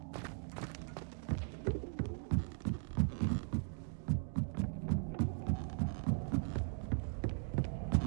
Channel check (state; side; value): silent; left; 52 dB below the other